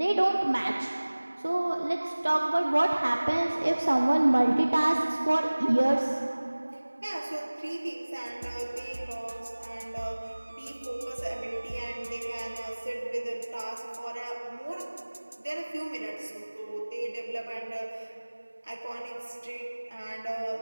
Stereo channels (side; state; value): both; inverted; correlation -1.00